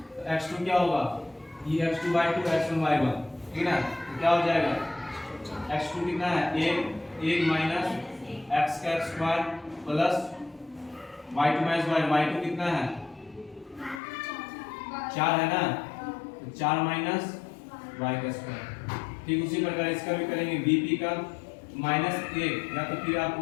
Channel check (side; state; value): right; drops out; at 14.0 s